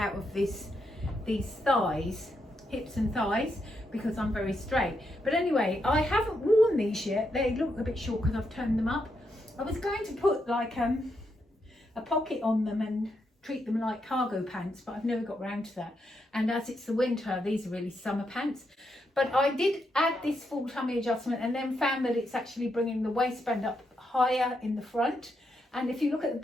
of these thighs, hips and thighs, because I'm very straight. But anyway, I haven't worn these yet. They look a bit short because I've turned them up. I was going to put like a pocket on them and treat them like cargo pants, but I've never got around to that. And as it's the winter, these are really summer pants. But I did add this full tummy adjustment, and then found that it's actually bringing the waistband up higher in the front. And if you look at the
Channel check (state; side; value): normal; both; correlation 0.81